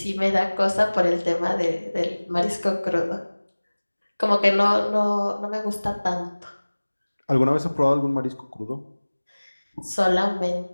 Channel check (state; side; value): inverted; both; correlation -1.00